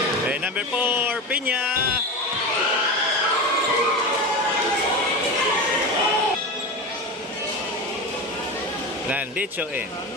Number 4, Piña. Landicho in.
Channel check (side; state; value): both; normal; correlation 0.24